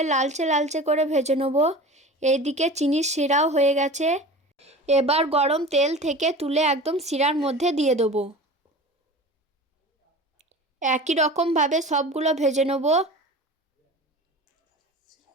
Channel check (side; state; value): both; normal; correlation 0.36